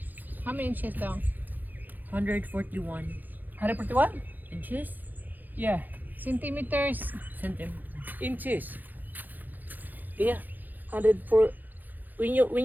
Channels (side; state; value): left; late; 0.085 ms